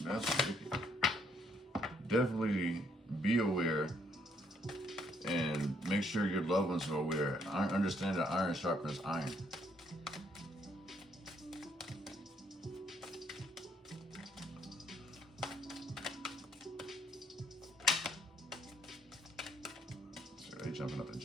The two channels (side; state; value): both; normal; correlation 0.69